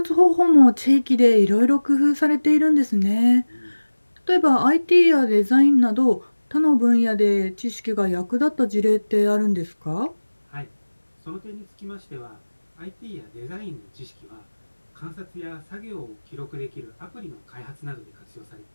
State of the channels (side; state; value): both; inverted; correlation -1.00